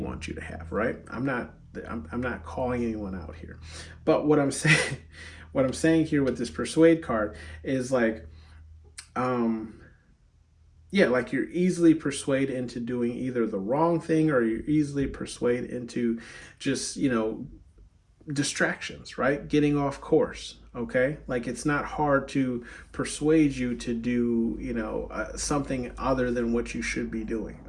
you to have, right? I'm not calling anyone out here, but what I'm saying here with this persuade card is like yeah, like you're easily persuaded into doing either the wrong thing or you're easily persuaded into just, you know, distractions, right? Getting off course. Okay. Like it's not hard to persuade you to do, you know, something other than what you should be doing.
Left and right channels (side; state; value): both; identical; correlation 1.00